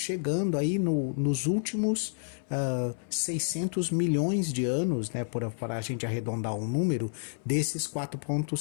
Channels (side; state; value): right; silent; 58 dB below the other